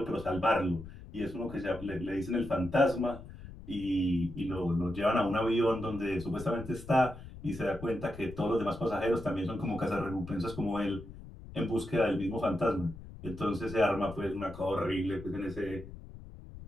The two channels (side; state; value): left; noise; rumble, 15 dB below the sound